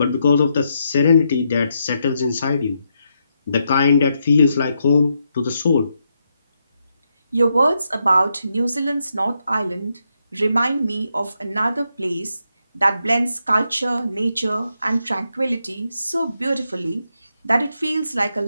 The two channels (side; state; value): both; inverted; correlation -0.81